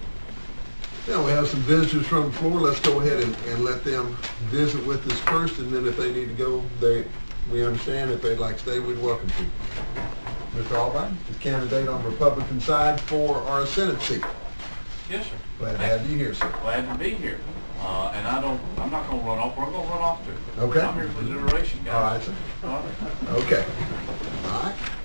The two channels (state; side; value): inverted; both; correlation -1.00